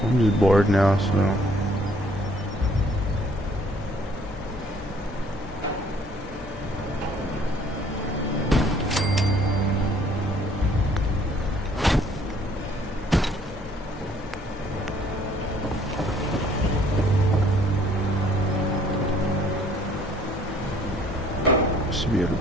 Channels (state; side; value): normal; both; correlation 0.60